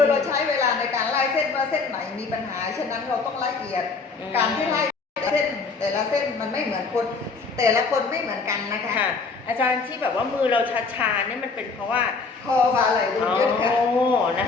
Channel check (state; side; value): quieter; right; 4.4 dB